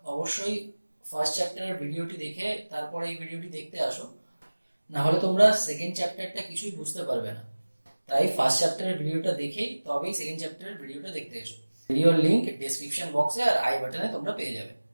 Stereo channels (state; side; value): inverted; both; correlation -1.00